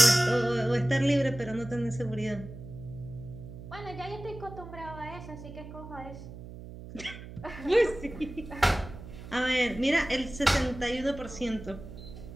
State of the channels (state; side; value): noise; right; hum, 13 dB below the sound